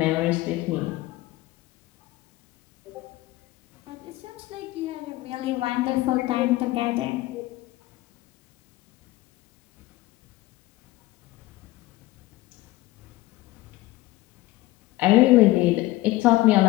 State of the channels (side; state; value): right; quieter; 18.2 dB